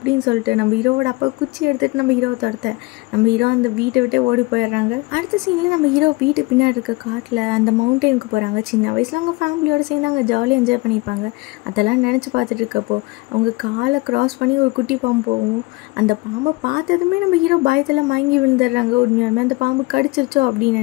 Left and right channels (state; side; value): quieter; right; 23.8 dB